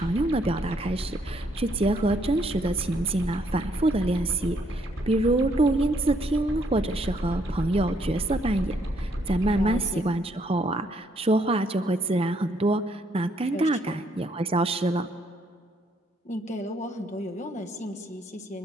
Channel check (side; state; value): both; normal; correlation 0.70